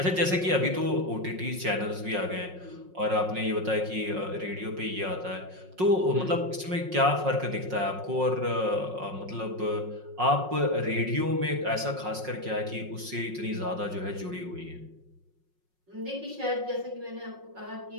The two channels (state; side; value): late; left; 5.5 ms